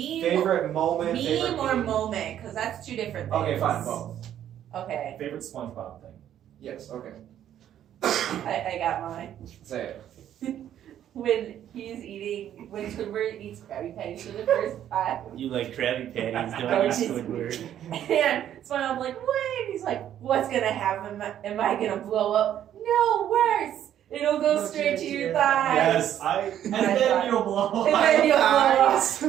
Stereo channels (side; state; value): left; quieter; 10.8 dB